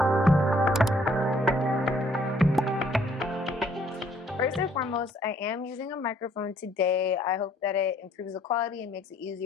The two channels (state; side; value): normal; both; correlation 0.64